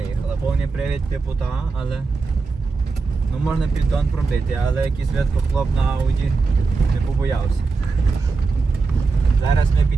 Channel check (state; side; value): quieter; left; 4.3 dB